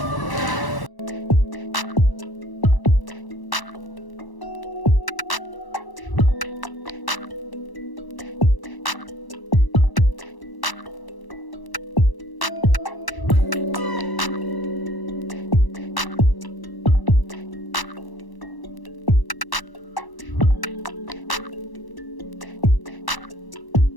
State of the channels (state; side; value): late; right; 1.0 ms